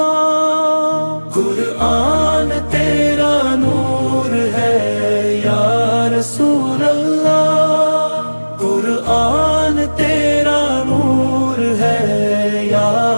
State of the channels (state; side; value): inverted; both; correlation -1.00